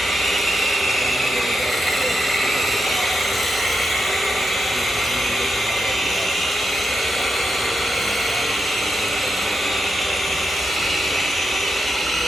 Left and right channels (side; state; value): both; normal; correlation 0.86